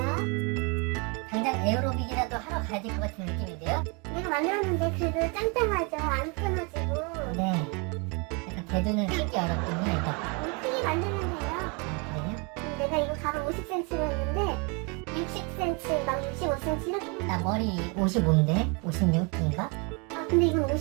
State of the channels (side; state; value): left; quieter; 31.0 dB